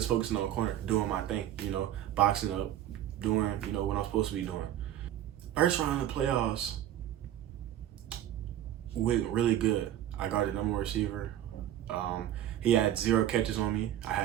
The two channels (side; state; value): left; quieter; 11.8 dB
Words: focusing on the corner, doing my thing, boxing up, doing, what I'm supposed to be doing. First round of the playoffs went really good. I got the number one receiver. He had 0 catches on me. I